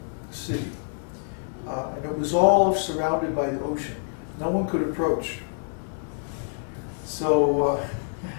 city. And it was all surrounded by the ocean. No one could approach. So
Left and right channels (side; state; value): right; silent; 61 dB below the other